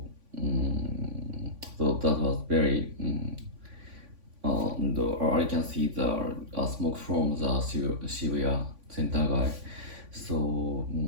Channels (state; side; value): late; left; 3.5 ms